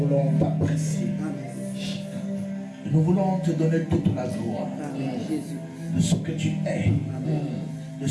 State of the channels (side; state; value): both; identical; correlation 1.00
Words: t'apprécier. Nous voulons te donner toute la gloire de ce que tu es, de